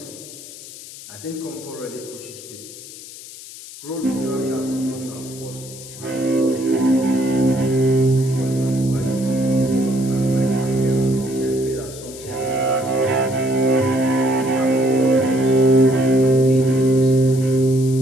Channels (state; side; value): noise; left; hiss, 15 dB below the sound